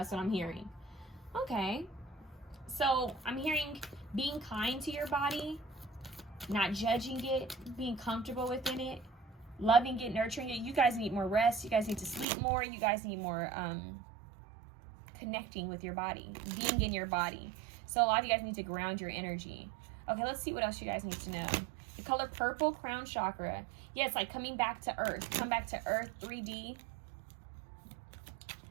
what I'm hearing. Okay. So I'm hearing being kind to your body, not judging it, being comfortable within it, loving it, nurturing it. You guys need more rest. You guys need to sleep more. You guys need more connecting with your body, being in your body. So a lot of you guys need to ground your energy. Okay, let's see what else you guys need to know. The color purple, crown chakra. Yeah, it's like coming back to earth. Come back to earth, 3D.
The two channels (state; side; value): drops out; left; at 12.2 s